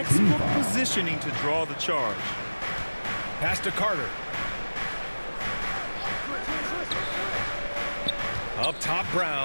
positioning to draw the charge. Pass to Carter. Up top,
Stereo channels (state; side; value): inverted; both; correlation -1.00